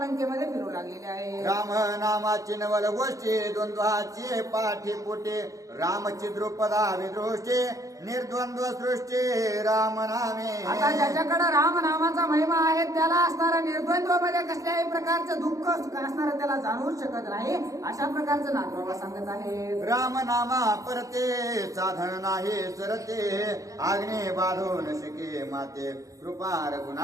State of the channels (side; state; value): left; late; 0.16 ms